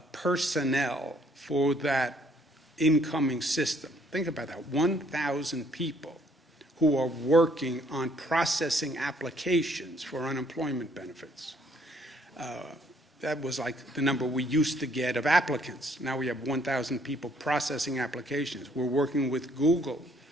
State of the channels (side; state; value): both; normal; correlation 0.65